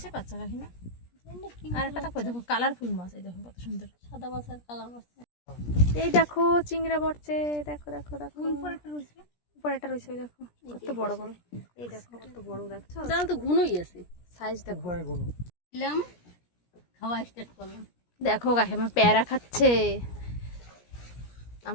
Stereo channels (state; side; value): late; right; 17 ms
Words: বাচ্চা কাকিমা? আর একটা দেখো, দেখো কালারফুল মাছ, এই দেখো কত সুন্দর। সাদা মাছ আর কালা মাছ। এই দেখো চিংড়া পড়ছে, দেখো দেখো দেখো। উপরে একটা রয়েছে, ওই দেখো কত বড় বড়। এই দেখো কত বড়, দেখছো জাল তো ঘুনোই আছে। সাইজ দেখো। উপরে কোনো দিলাম, খাওয়া স্টার্ট করলাম। দেখো কাকিমা পেয়ারা খাচ্ছে,